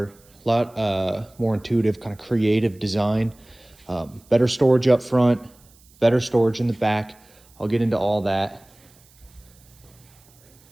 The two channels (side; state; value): right; noise; hiss, 29 dB below the sound